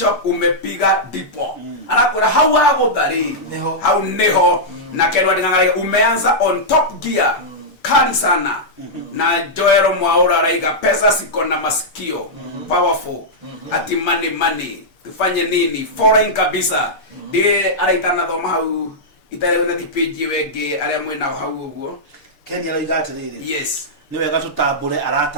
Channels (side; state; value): right; late; 6.7 ms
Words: umepiga dipo anakora hau agudhari hau neho na Ken Watingang'araiga umeanza on top gear kali sana na Joero Mwaura Raiga pesa siko na masikio powerful ati money tufanye nini foreign kabisa ndiye araitana thoma hau itarewe na page wenge aria mwina hau uguo Kenya Raiga atiriri yes ni wega tutambure